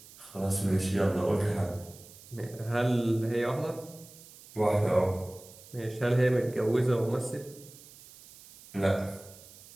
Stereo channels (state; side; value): noise; right; hiss, 20 dB below the sound